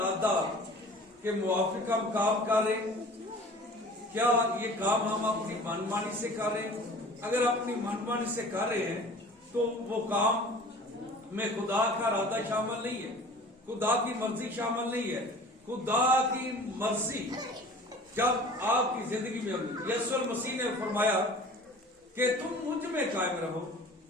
کے موافق ہم کام کر رہے ہیں. کیا یہ کام ہم اپنی من مانی سے کر رہے ہیں؟ اگر اپنی من مانی سے کر رہے ہیں تو وہ کام میں خدا کا ارادہ شامل نہیں ہے, خدا کی مرضی شامل نہیں ہے. خدا کی مرضی جب آپ کی زندگی میں ہوگی, یسوع المسیح نے فرمایا کہ تم مجھ میں قائم رہو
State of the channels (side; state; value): both; normal; correlation 0.44